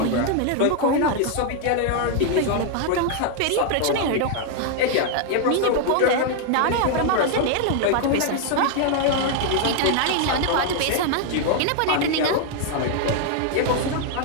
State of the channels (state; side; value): different; both; correlation 0.00